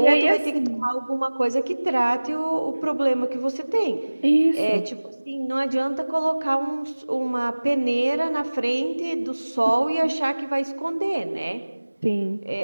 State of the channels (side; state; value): both; inverted; correlation -1.00